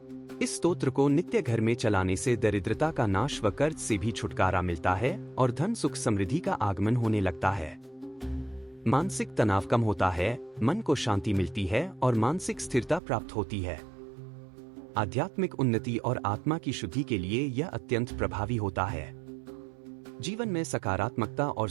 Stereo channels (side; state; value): left; drops out; at 13.0 s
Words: इस स्तोत्र को नित्य घर में चलाने से दरिद्रता का नाश व कर्ज से भी छुटकारा मिलता है और धन सुख समृद्धि का आगमन होने लगता है। मानसिक तनाव कम होता है, मन को शांति मिलती है और मानसिक स्थिरता प्राप्त होती है। आध्यात्मिक उन्नति और आत्मा की शुद्धि के लिए यह अत्यंत प्रभावी होता है। जीवन में सकारात्मकता और